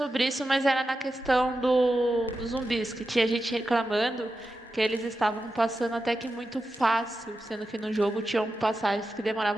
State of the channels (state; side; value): normal; both; correlation 0.90